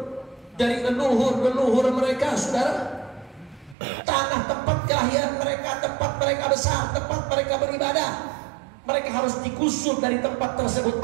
dari leluhur mereka, saudara. Tanah tempat kelahiran mereka, tempat mereka besar, tempat mereka beribadah, mereka harus digusur dari tempat tersebut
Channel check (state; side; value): drops out; left; at 3.8 s